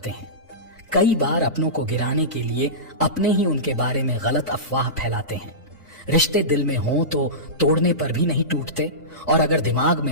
हैं। कई बार अपनों को गिराने के लिए अपने ही उनके बारे में गलत अफवाह फैलाते हैं। रिश्ते दिल में हों तो तोड़ने पर भी नहीं टूटते, और अगर दिमाग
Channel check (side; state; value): both; normal; correlation -0.19